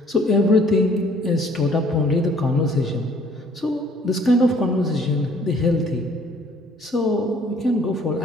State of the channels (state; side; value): normal; both; correlation 0.59